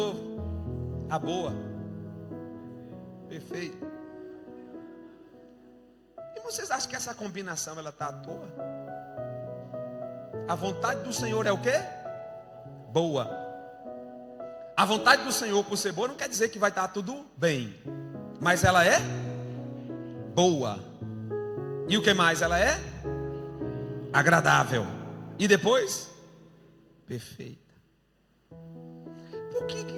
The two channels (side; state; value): both; identical; correlation 1.00